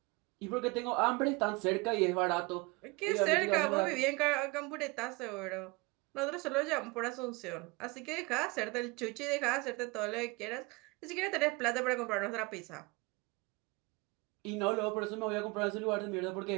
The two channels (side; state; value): left; quieter; 25.6 dB